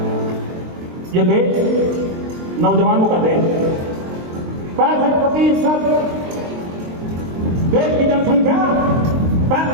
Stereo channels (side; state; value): left; late; 23 ms